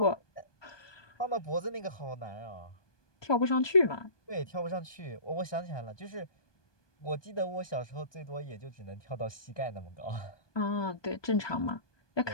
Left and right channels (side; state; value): right; late; 1.2 ms